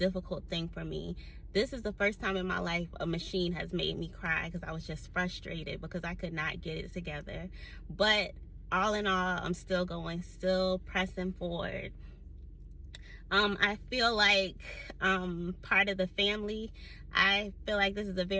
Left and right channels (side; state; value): both; identical; correlation 1.00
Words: thing for me. This is the first time in my life a machine has made me cry because I was just frustrated because I could not get it together. But all in all, I'm still going, still pressing forward. I feel like part of the family. I feel like this is a